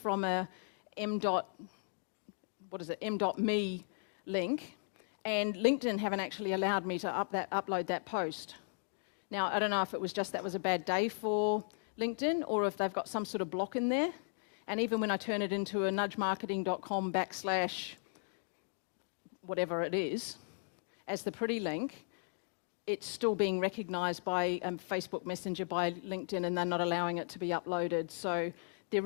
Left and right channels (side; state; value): right; silent; digital silence